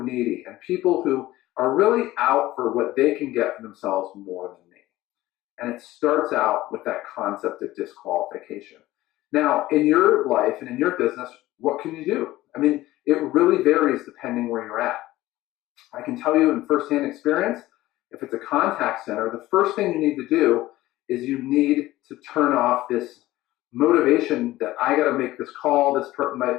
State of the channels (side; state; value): right; quieter; 16.6 dB